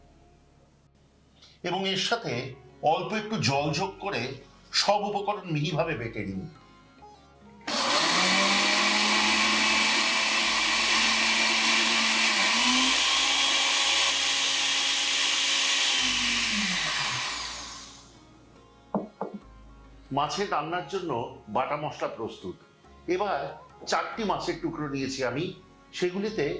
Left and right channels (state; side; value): identical; both; correlation 1.00